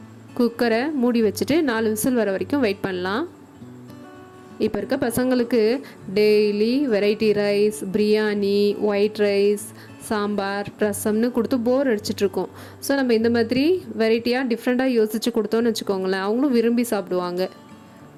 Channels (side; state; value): both; identical; correlation 1.00